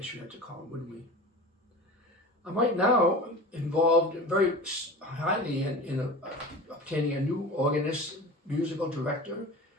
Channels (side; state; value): both; normal; correlation 0.34